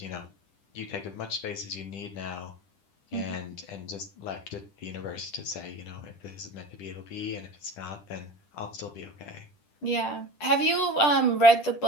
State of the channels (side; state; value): right; late; 10 ms